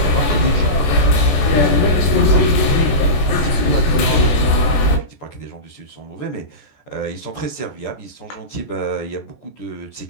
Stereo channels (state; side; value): late; right; 14 ms